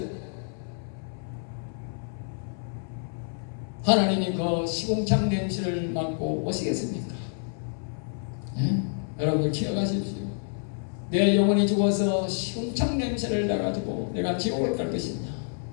하나님이 그 시궁창 냄새를 맡고 오시겠습니까? 예? 여러분들 기억하십시오. 내 영혼이 죽어서 시궁창 냄새를 나가지고 내가 지옥을 갈 것이냐?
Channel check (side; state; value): right; silent; 59 dB below the other